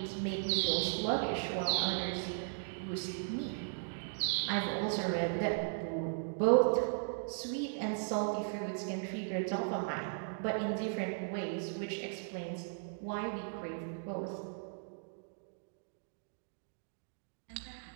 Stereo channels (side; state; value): left; silent; digital silence